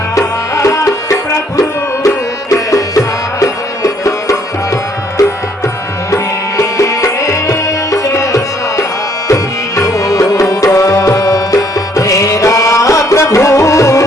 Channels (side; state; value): both; normal; correlation 0.65